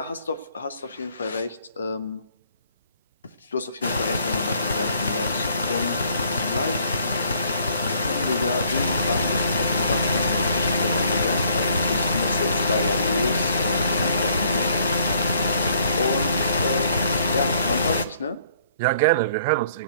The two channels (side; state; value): both; inverted; correlation -0.63